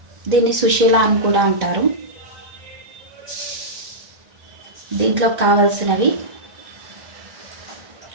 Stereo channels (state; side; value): late; left; 1.9 ms